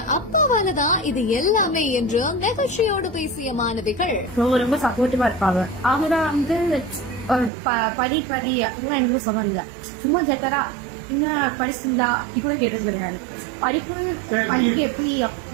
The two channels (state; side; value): drops out; left; at 7.5 s